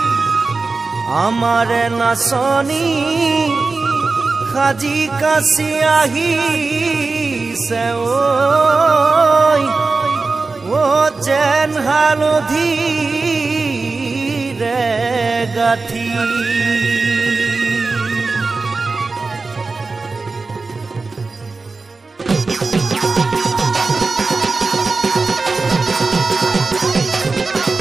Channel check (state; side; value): quieter; left; 4.0 dB